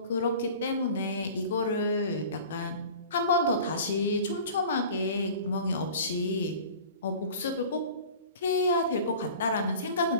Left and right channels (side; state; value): both; inverted; correlation -0.41